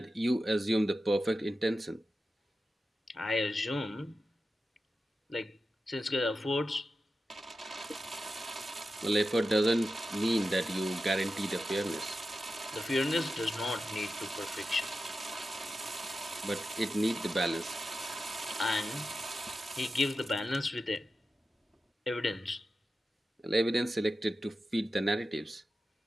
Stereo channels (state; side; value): normal; both; correlation 0.92